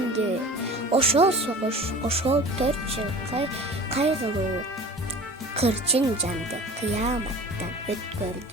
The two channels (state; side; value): normal; both; correlation 0.40